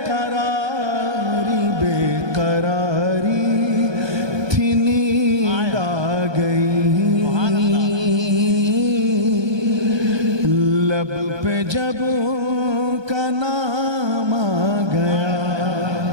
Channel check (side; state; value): left; late; 1.2 ms